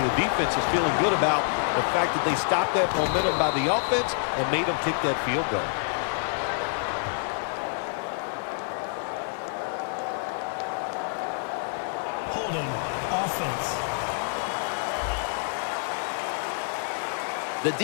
the defense is feeling good about the fact that they stopped that momentum by the offense and made them kick that field goal. Holding. Offense. The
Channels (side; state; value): right; silent; digital silence